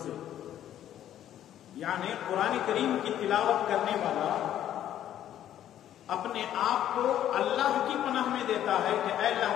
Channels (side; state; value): right; quieter; 11.3 dB